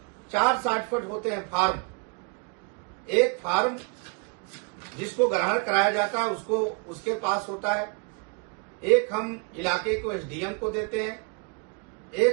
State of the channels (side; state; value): left; quieter; 34.7 dB